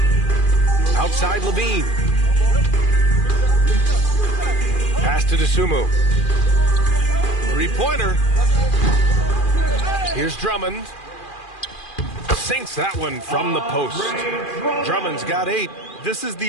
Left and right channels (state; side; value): late; right; 2.4 ms